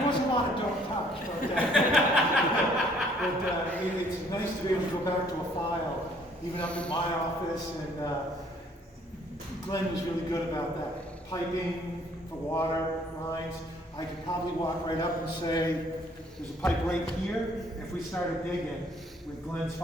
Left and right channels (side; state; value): both; normal; correlation 0.61